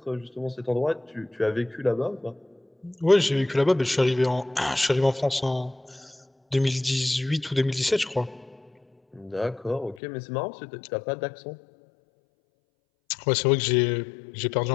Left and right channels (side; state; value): right; drops out; at 10.0 s